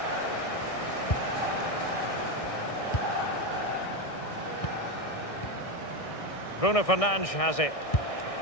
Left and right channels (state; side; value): late; right; 1.6 ms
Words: Bruno Fernandes has it.